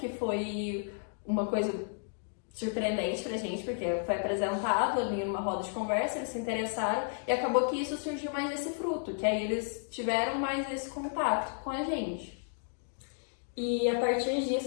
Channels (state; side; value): silent; right; digital silence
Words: foi uma coisa surpreendente pra gente, porque foi apresentado ali numa roda de conversa, eles se interessaram e acabou que isso surgiu mais esse fruto, que aí eles tiveram mais esse contato com a gente. E a partir